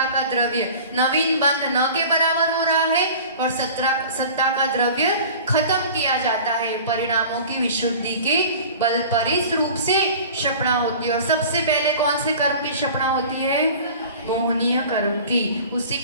का द्रव्य नवीन बंध न के बराबर हो रहा है और सत्ता का द्रव्य खत्म किया जाता है परिणामों की विशुद्धि के बल पर। इस रूप से क्षपणा होती है। और सबसे पहले कौन से कर्म की क्षपणा होती है, मोहनीय कर्म की, उसी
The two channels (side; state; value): both; inverted; correlation -0.41